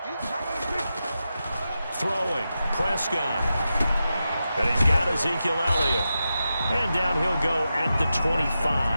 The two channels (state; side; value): inverted; both; correlation -0.90